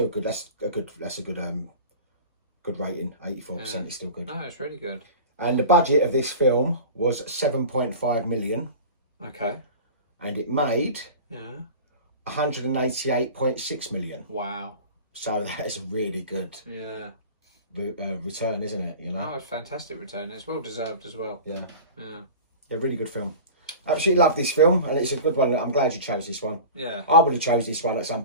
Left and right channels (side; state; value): both; inverted; correlation -0.36